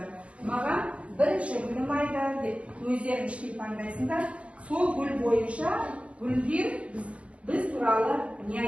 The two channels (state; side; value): late; left; 0.062 ms